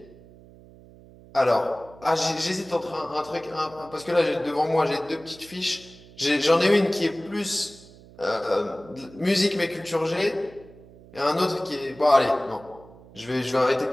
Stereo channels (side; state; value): right; noise; hum, 22 dB below the sound